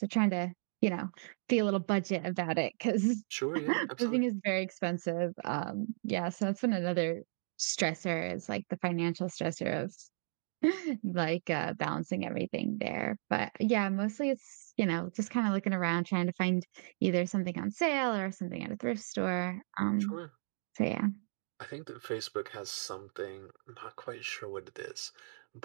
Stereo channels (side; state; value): left; silent; digital silence